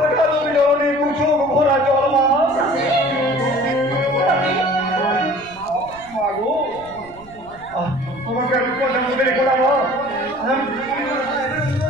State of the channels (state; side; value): noise; right; rumble, 23 dB below the sound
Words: অভিযোগ ভরা জল মা।